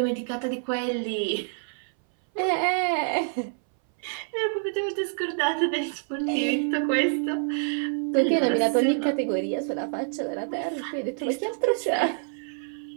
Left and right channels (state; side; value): silent; left; 60 dB below the other